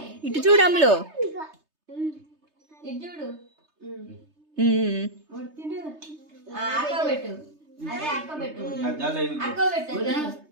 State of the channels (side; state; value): left; late; 3.3 ms